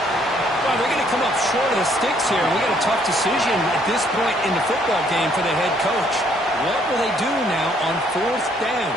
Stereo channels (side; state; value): both; normal; correlation 0.66